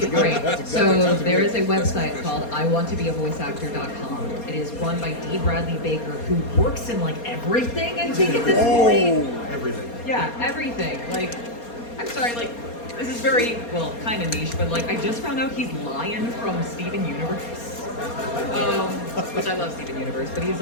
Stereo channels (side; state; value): right; late; 4.3 ms